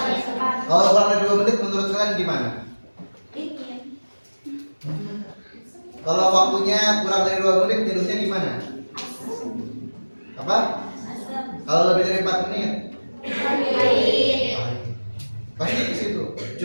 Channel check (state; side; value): inverted; both; correlation -1.00